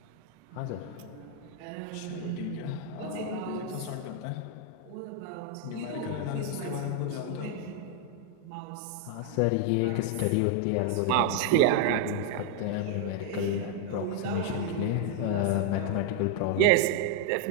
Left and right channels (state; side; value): different; both; correlation 0.00